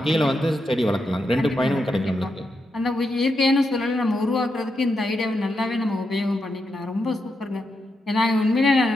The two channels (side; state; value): both; normal; correlation 0.84